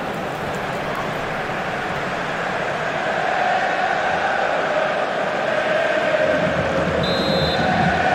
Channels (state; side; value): identical; both; correlation 1.00